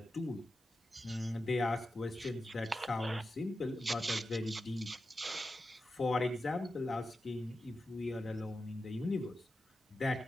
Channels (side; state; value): both; normal; correlation 0.91